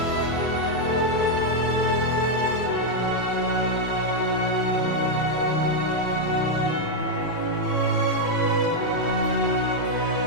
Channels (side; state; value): both; normal; correlation 0.00